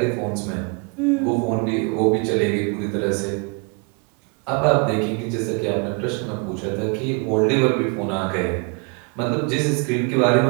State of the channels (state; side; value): quieter; left; 34.3 dB